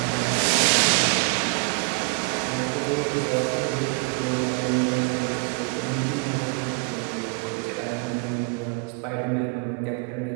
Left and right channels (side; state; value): left; quieter; 34.8 dB